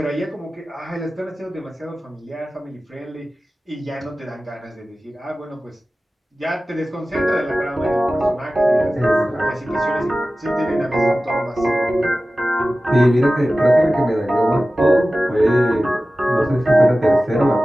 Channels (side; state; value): both; normal; correlation 0.96